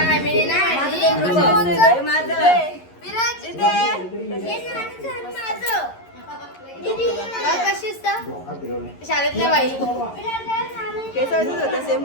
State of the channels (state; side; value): late; right; 11 ms